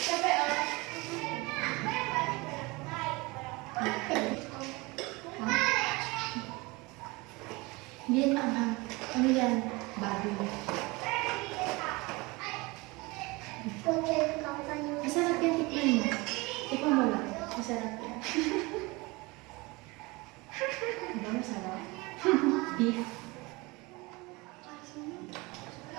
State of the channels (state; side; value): quieter; left; 24.3 dB